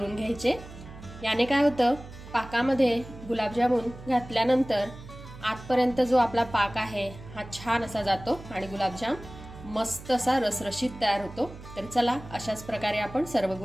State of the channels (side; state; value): right; noise; hum, 15 dB below the sound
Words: घ्यायचे। याने काय होतं, पाकामध्ये गुलाबजामुन घातल्यानंतर आतपर्यंत जो आपला पाक आहे हा छान असा जातो आणि गुलाबजाम मस्त असा रसरशीत तयार होतो। तर चला, अशाच प्रकारे आपण सर्व